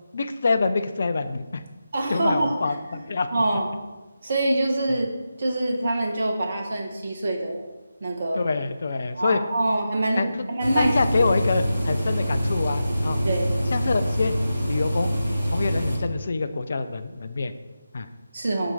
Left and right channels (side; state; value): both; inverted; correlation -0.90